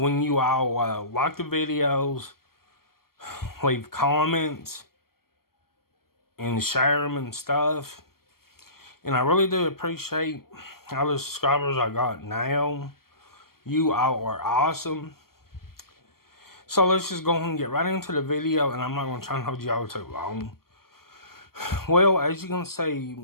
you all like the videos, leave comments, and share them and stuff. And I really do appreciate all the subscribers I got now. You all are awesome. So let's just go ahead and get right into the video, and I'm not going to try and hold y'all too long. Well, as you can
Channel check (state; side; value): late; right; 0.93 ms